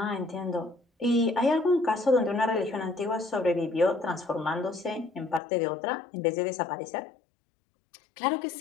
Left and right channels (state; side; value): drops out; right; at 5.4 s